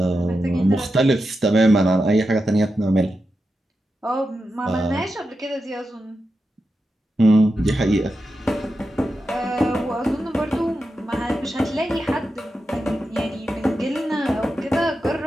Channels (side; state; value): both; normal; correlation 0.89